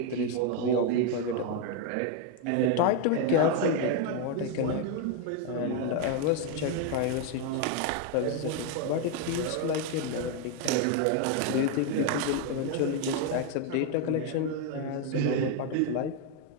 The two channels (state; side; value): different; both; correlation 0.01